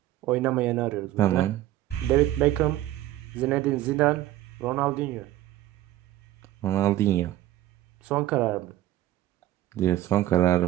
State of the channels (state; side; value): quieter; left; 14.5 dB